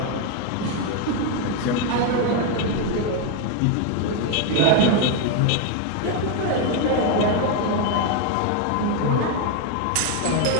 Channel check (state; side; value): different; both; correlation 0.01